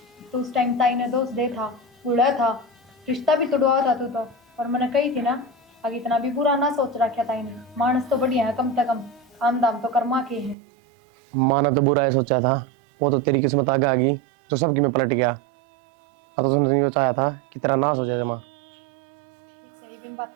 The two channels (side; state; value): left; drops out; at 10.6 s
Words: तो उस टाइम ताई ने दोस्त दे था, बूढ़ा था, रिश्ता भी तोड़वा था तू तो। और मैंने कही थी ना, आगे इतना भी बुरा ना सोच रखा ताई ने, मानस तो बढ़िया है, कम से कम काम दाम तो कर्मा के है। माना तो बुरा है सोचा था, वो तो तेरी किस्मत आगे आ गई तो सबकी में पलट गया। अब तो तुमने ये चाहा था कि तेरा नाश हो जाए जमा। सही बिन बात